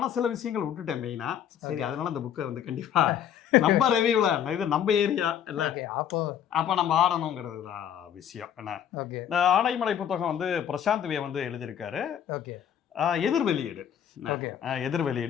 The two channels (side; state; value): right; quieter; 9.4 dB